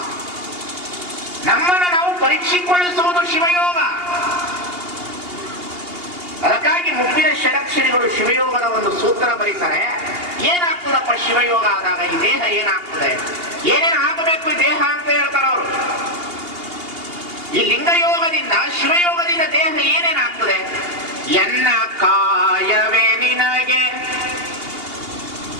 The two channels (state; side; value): late; left; 2.8 ms